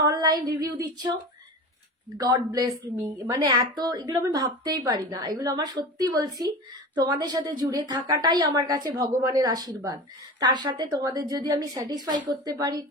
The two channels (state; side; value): normal; both; correlation 0.31